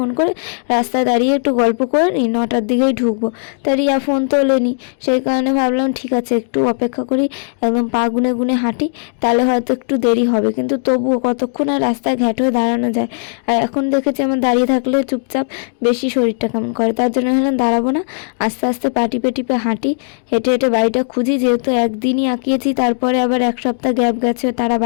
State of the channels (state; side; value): silent; right; digital silence